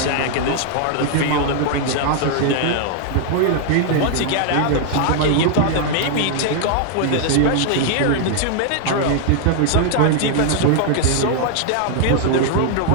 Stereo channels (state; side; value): different; both; correlation 0.00